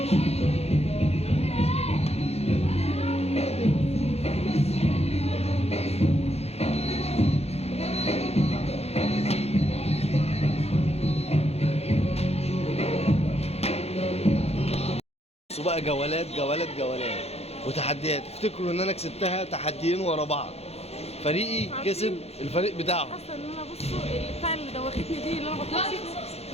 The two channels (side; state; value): right; late; 0.30 ms